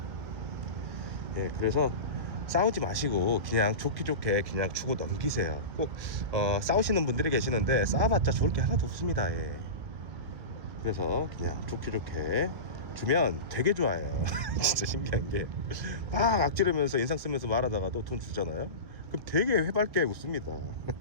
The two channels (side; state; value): left; late; 1.6 ms